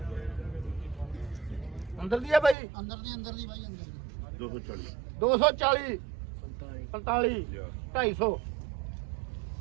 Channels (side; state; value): left; drops out; at 2.6 s